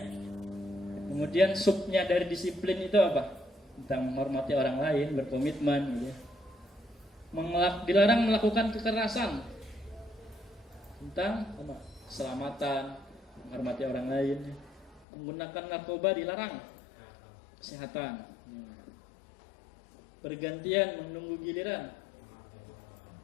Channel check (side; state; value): right; drops out; at 15.1 s